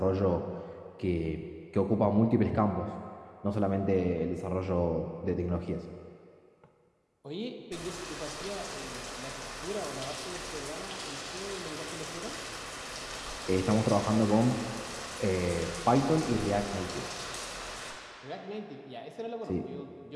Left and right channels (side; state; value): both; identical; correlation 1.00